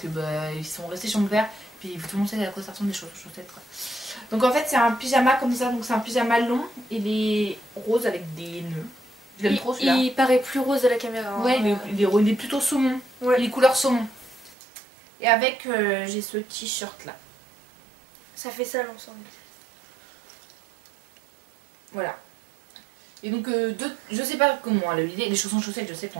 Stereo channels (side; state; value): left; drops out; at 14.6 s